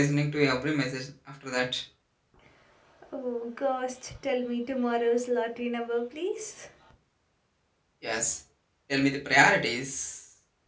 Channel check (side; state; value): both; identical; correlation 1.00